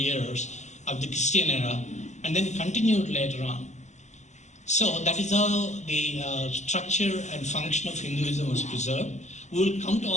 of the Christian era, and then continued later on. So that is how the structure and function of Hinduism was preserved. We will come to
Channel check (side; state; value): right; late; 0.34 ms